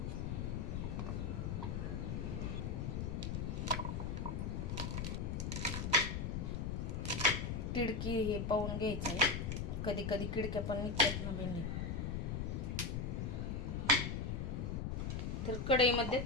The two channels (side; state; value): left; noise; rumble, 1 dB below the sound